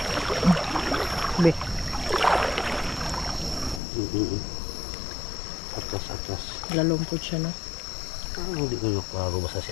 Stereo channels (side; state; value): right; drops out; at 3.8 s